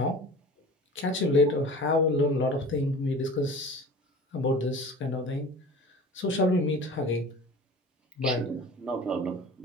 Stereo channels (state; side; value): normal; both; correlation 0.39